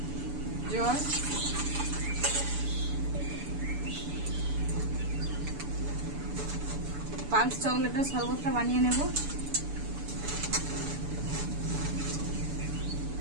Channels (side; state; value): left; late; 7.0 ms